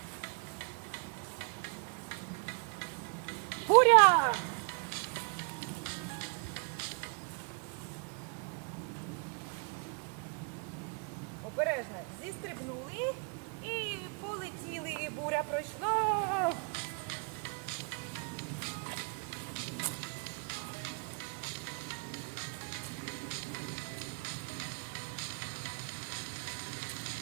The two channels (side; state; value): left; quieter; 35.3 dB